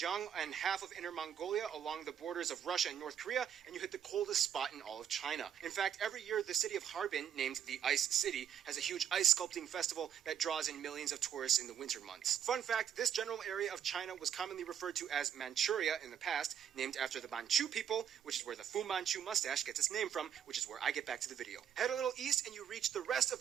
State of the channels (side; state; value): left; quieter; 9.0 dB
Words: and half of Inner Mongolia along the borders of Russia and North Korea, and you hit the coldest spot in all of China. In fact, every year the city of Harbin, named the Ice City, has a huge ice sculpting festival that draws in millions of tourists in the winter months. Fun fact, this general area of China was commonly referred to as Manchuria in the past, named after the Manchu people, which is where the Fu Manchu mustache gets its name from, which is where I get back to the video. Head a little east and you reach the rest of